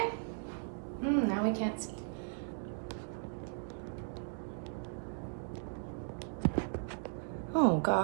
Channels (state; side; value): silent; left; digital silence